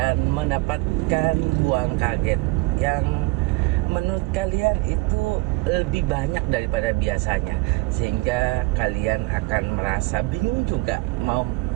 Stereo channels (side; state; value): left; quieter; 23.0 dB